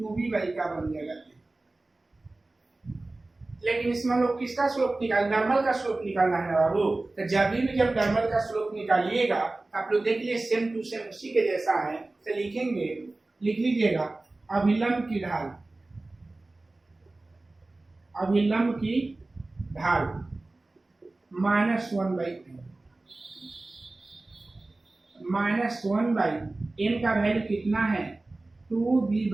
बाई का बन जाएगा। लेकिन इसमें हम लोग किसका स्लोप निकाल, नॉर्मल का स्लोप निकालना है बाबू। तो जब नॉर्मल का स्लोप निकालिएगा आप लोग देख लीजिए सेम टू सेम उसी के जैसा है। तो लिखेंगे, लिख लीजिएगा अभिलंब की ढाल, अभिलंब की ढाल minus 1 by minus 1 by m का वैल्यू कितना है 2b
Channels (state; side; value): quieter; left; 3.0 dB